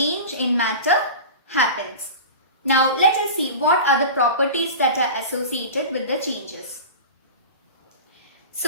in matter happens. Now let us see what are the properties that are associated with the changes.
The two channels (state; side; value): inverted; both; correlation -0.31